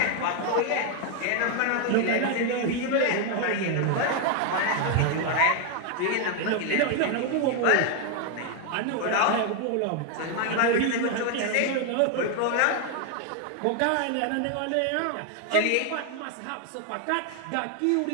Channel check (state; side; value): different; both; correlation 0.01